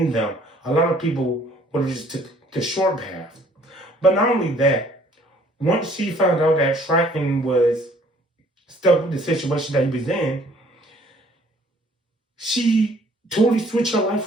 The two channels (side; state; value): both; normal; correlation 0.59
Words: them. A lot of people would have just took the short path. But not only that, once she found out that Triton was stuck with the situation that he was in, she totally switched her